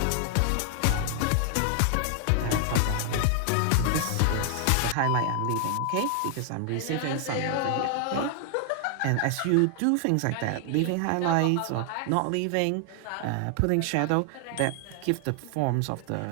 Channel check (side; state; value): both; different; correlation 0.00